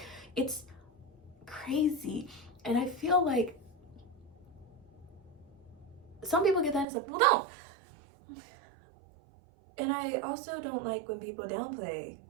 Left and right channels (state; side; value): drops out; left; at 6.9 s